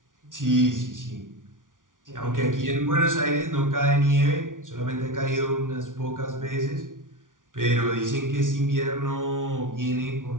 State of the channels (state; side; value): late; left; 0.88 ms